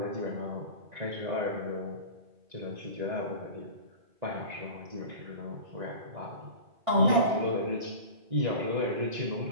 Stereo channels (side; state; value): left; late; 1.9 ms